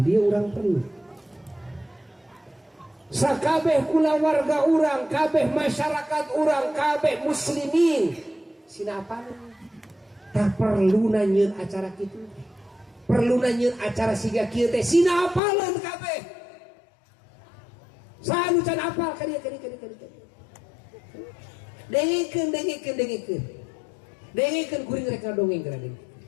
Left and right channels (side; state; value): right; drops out; at 15.4 s